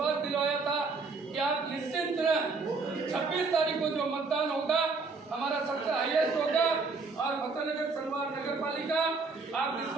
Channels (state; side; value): quieter; left; 4.2 dB